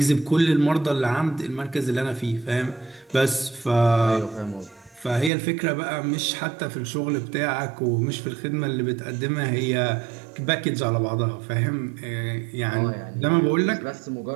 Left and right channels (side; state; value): left; drops out; at 5.3 s